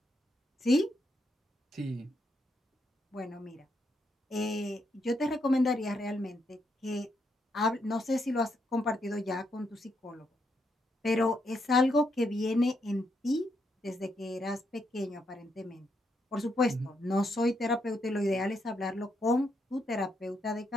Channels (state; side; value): normal; both; correlation 0.79